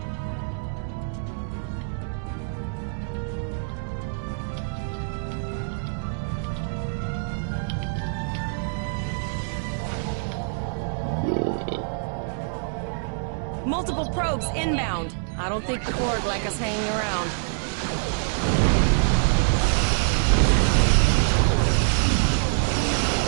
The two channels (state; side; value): silent; left; digital silence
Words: Multiple probes inbound. I don't think the Borg like us hanging around.